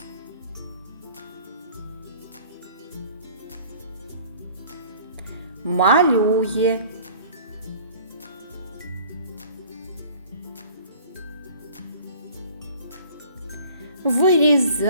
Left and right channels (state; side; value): inverted; both; correlation -0.50